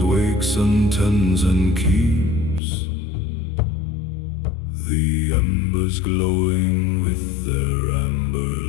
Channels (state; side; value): drops out; right; at 2.6 s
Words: wakes and tends and keeps the embers glowing with their amber